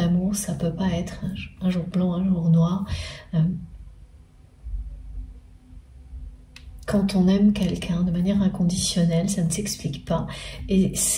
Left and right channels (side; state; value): both; identical; correlation 1.00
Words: ça peut pas être un jour blanc, un jour noir. Quand on aime quelqu'un de manière inconditionnelle, ça ne s'explique pas et